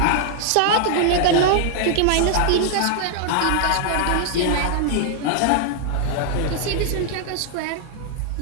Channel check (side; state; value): both; different; correlation -0.01